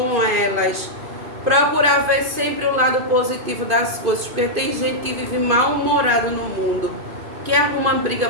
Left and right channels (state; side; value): late; left; 2.5 ms